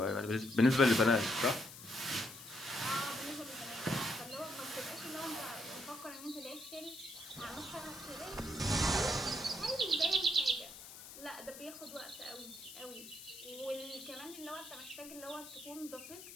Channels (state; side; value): noise; left; hiss, 14 dB below the sound